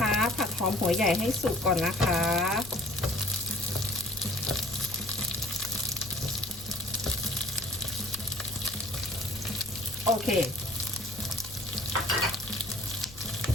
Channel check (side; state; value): left; noise; rumble, 17 dB below the sound